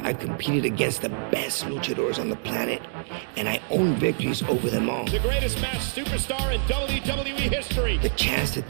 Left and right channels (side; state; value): left; silent; digital silence